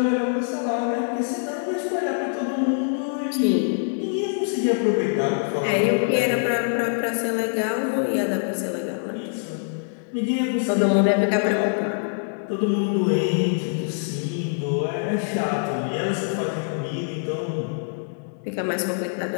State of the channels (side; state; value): right; silent; digital silence